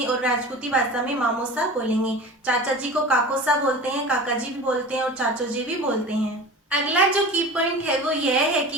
और राजपूती भाषा में मामोसा बोलेंगे। चाचा जी को काकोसा बोलते हैं, काका जी भी बोलते हैं और चाचो जी भी बोलते हैं। अगला जो की पॉइंट है वो यह है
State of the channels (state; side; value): normal; both; correlation 0.35